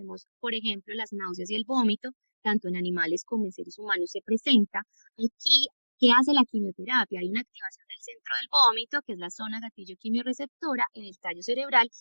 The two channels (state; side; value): inverted; both; correlation -1.00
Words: por ejemplo, las náuseas y el vómito, tanto en animales como en seres humanos se presenta. Aquí, ¿qué hace la quimioterapia? Hay una activación del centro del vómito, que es la zona gatillo quimiorreceptora en el tallo cerebral,